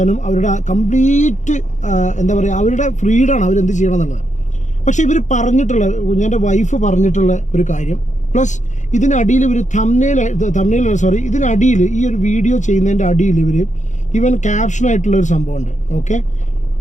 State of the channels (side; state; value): right; late; 0.35 ms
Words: അവരുടെ കംപ്ലീറ്റ് എന്താ പറയുക, അവരുടെ ഫ്രീഡമാണ് അവരെന്ത് ചെയ്യണം എന്നുള്ളത്. പക്ഷേ ഇവർ പറഞ്ഞിട്ടുള്ള, എൻ്റെ വൈഫ് പറഞ്ഞിട്ടുള്ള ഒരു കാര്യം, പ്ലസ് ഇതിനടിയിൽ ഇവർ ഇതിനടിയിൽ ഈ ഒരു വീഡിയോ ചെയ്യുന്നതിൻ്റെ അടിയിൽ ഇവൻ ക്യാപ്ഷനായിട്ടുള്ള ഒരു സംഭവമുണ്ട്. ഓക്കെ,